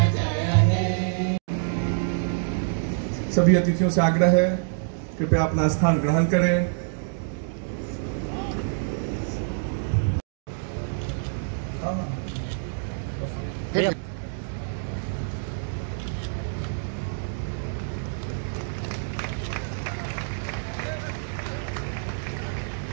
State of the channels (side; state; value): left; silent; digital silence